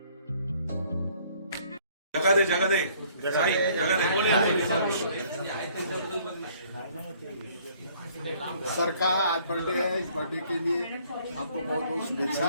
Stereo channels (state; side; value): inverted; both; correlation -0.60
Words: जगा दे साई, जगा दे. सर का आज बर्थडे है, इस बर्थडे के लिए आपको बहुत बहुत